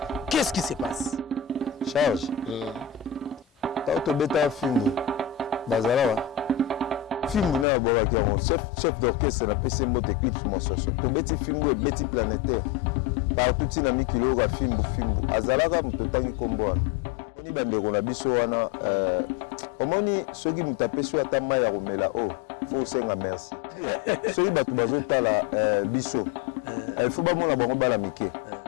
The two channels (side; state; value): right; drops out; at 7.7 s